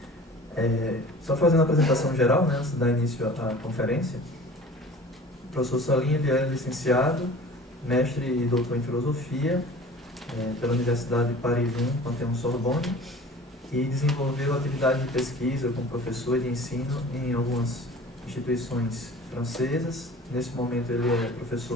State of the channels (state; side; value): normal; both; correlation 0.43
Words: Só fazendo a apresentação geral, né, antes de dar início à conferência, o professor Salim ele é licenciado, mestre e doutor em Filosofia pela Universidade de Paris I, Panthéon-Sorbonne, e desenvolveu atividade de pesquisa como professor de ensino em algumas instituições francesas. Nesse momento ele é